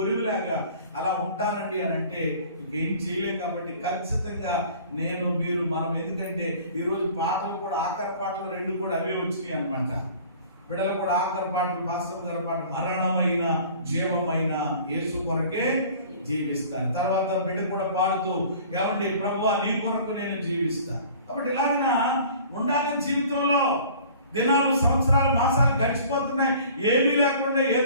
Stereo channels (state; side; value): inverted; both; correlation -0.47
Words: అలా ఉంటానండి అని అంటే ఇంకేం చేయలేం. కాబట్టి ఖచ్చితంగా మనం ఎందుకంటే ఈరోజు పాటలు కూడా ఆఖరి పాటలు 2 కూడా అవే వచ్చినాయి అనమాట. బిడ్డలు కూడా ఆఖరి పాటలు, పాస్టర్ గారి పాట మరణమైన జీవమైన యేసు కొరకే జీవిస్తాను. తర్వాత బిడ్డ కూడా పాడుతూ ప్రభువా నీ కొరకు నేను జీవిస్తాను. కాబట్టి ఇలాగా ఉండాలి. జీవితంలో దినాలు, సంవత్సరాలు, మాసాలు గడిచిపోతున్నాయి. ఏమీ లేకుండా